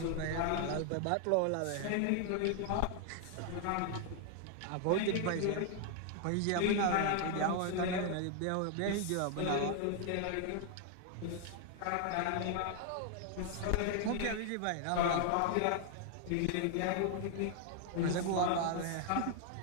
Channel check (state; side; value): different; both; correlation 0.00